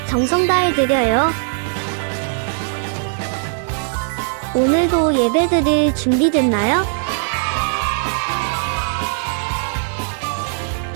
정성 다해 드려요. 오늘도 예배드릴 준비됐나요?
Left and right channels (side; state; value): left; silent; 62 dB below the other